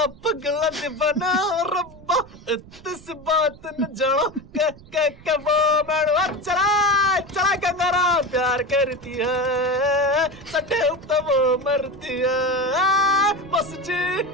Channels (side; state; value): right; noise; rumble, 22 dB below the sound